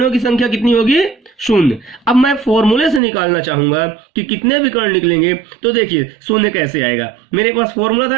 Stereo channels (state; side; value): drops out; left; at 3.0 s